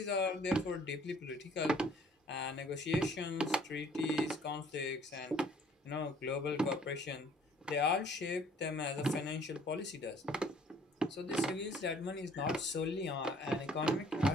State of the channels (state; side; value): normal; both; correlation 0.57